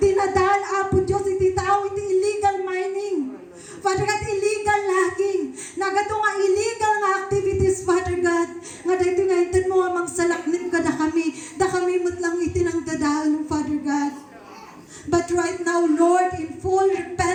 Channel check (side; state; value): both; identical; correlation 1.00